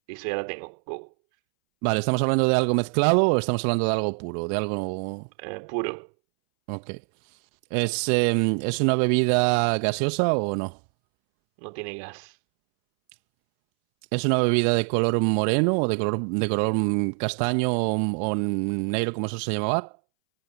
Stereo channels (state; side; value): silent; left; 62 dB below the other